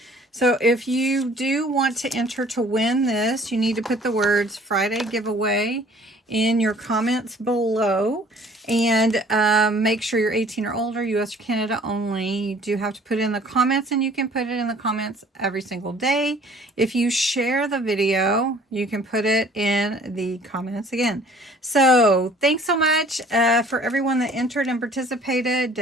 So if you do want to enter to win this, you need to put the words Friday giveaway in your comments below. And make sure you're 18 or older, US or Canada only. You do have to put it in the comments, and you can put it in the comments every single day. If you share the video, you can put it in the comments again. So thanks so much for everyone that entered and participated.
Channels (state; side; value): normal; both; correlation 0.53